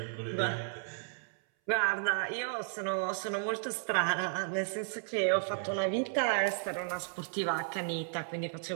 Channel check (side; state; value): left; silent; 55 dB below the other